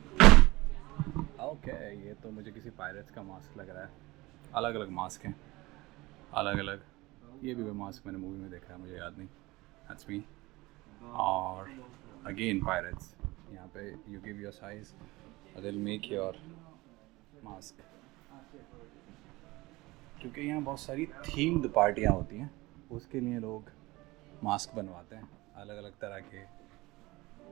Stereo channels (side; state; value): left; quieter; 21.0 dB